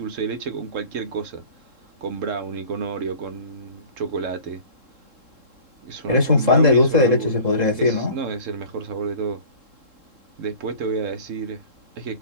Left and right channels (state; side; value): late; left; 3.7 ms